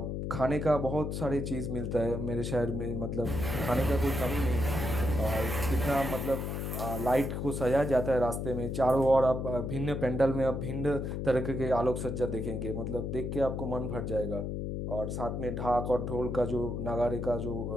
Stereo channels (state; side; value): noise; left; hum, 3 dB below the sound